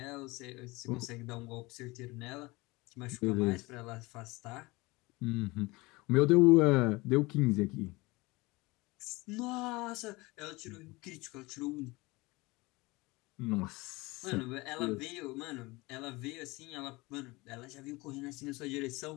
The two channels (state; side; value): quieter; right; 23.0 dB